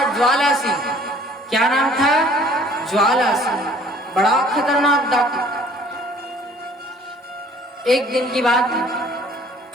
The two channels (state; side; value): normal; both; correlation 0.55